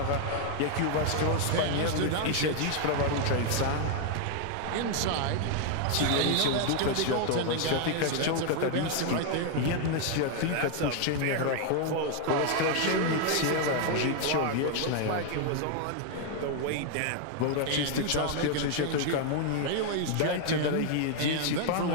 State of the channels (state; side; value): different; both; correlation 0.00